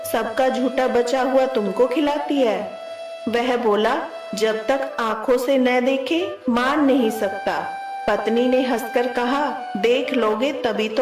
सबका झूठा बचा हुआ तुमको खिलाती है। वह बोला, जब तक आंखों से न देखे मान नहीं सकता। पत्नी ने हंसकर कहा, देख लोगे तभी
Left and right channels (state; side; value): identical; both; correlation 1.00